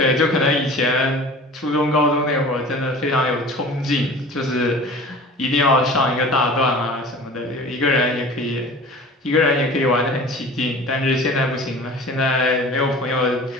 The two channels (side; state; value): both; normal; correlation 0.41